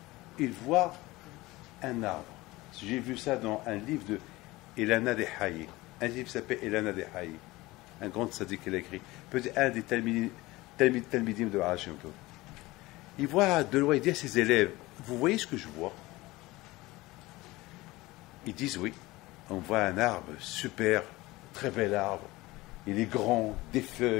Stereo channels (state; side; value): quieter; right; 20.0 dB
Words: il voit un arbre. J'ai vu ça dans un livre de Elana de Haye. Un livre qui s'appelle Elana de Haye. Un grand sadique qu'il a écrit. Peut-être un des talmidim de Baal Shem Tov. Il voit de loin, il dit à ses élèves, vous voyez ce que je vois? Ils disent oui. On voit un arbre super, très bel arbre. Il est grand, des